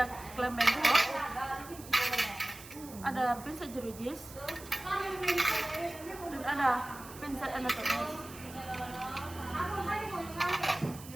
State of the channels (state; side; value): noise; right; hiss, 16 dB below the sound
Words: klem bengkok, ada pinset jeruji, dan ada pinset anatomis.